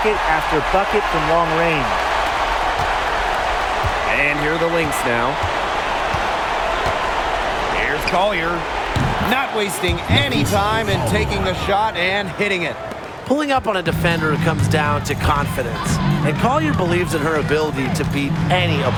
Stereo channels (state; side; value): identical; both; correlation 1.00